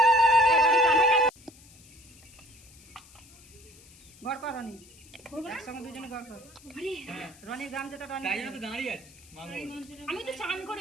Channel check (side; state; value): left; noise; hiss, 23 dB below the sound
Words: গড় কর রনি, একসঙ্গে দুজনে গড় কর। রনির গাম যেটা রনি দাঁড়িয়ে আছে। আমি তো চান